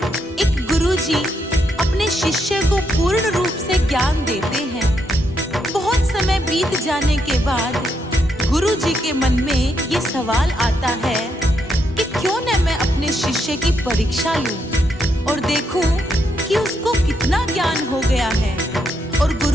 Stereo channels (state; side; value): normal; both; correlation 0.79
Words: एक गुरुजी अपने शिष्य को पूर्ण रूप से ज्ञान देते हैं। बहुत समय बीत जाने के बाद गुरुजी के मन में ये सवाल आता है कि क्यों न मैं अपने शिष्य की परीक्षा लूं और देखूं कि उसको कितना ज्ञान हो गया है। और